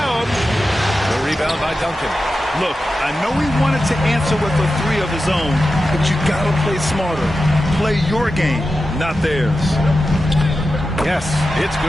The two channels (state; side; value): normal; both; correlation 0.92